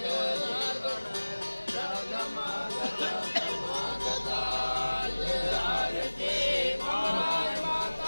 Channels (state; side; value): inverted; both; correlation -1.00